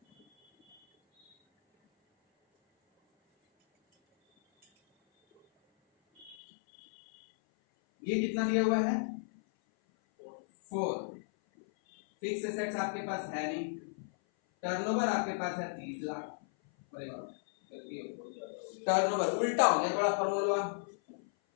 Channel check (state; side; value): drops out; right; at 6.4 s